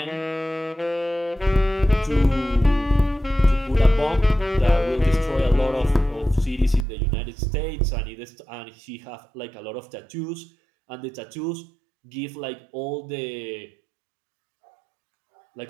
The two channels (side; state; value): left; drops out; at 6.9 s